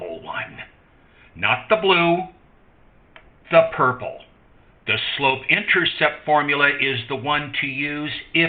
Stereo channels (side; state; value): both; identical; correlation 1.00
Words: one. Not the blue, the purple. The slope-intercept formula is the one to use